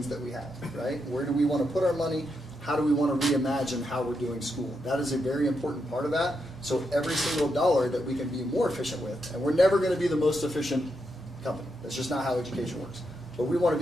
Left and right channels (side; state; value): both; normal; correlation 0.83